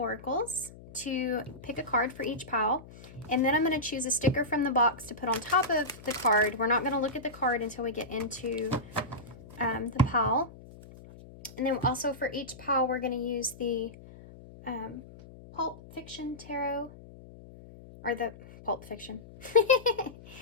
to pick a card for each pile. And then I'm going to choose a sticker from the box to put on top of the card. We're not going to look at the card until we get into the pile. And then also for each pile, we're going to use the Pulp Fiction Tarot, or the Pulp Fiction,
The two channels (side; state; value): left; noise; hum, 18 dB below the sound